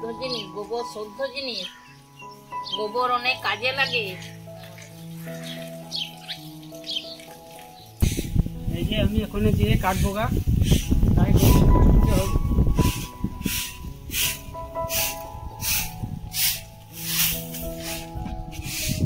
জিনিস, গোবর শুদ্ধ জিনিস, গোবর অনেক কাজে লাগে। এই যে আমি ওখানে দিয়ে কাটবো গা, তাই দিতে হবে।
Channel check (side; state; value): both; identical; correlation 1.00